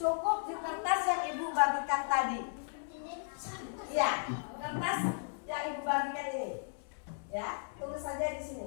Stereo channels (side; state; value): right; silent; 54 dB below the other